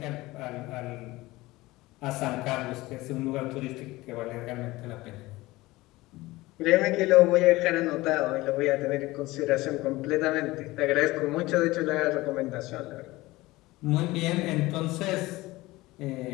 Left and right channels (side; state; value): right; quieter; 19.6 dB